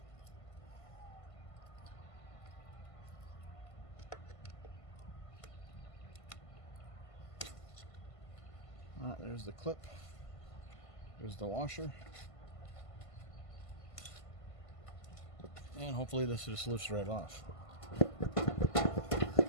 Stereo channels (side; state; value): right; late; 1.5 ms